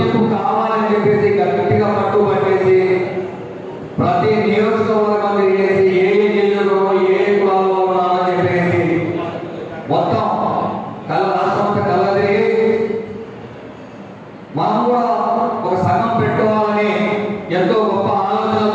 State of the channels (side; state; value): both; identical; correlation 1.00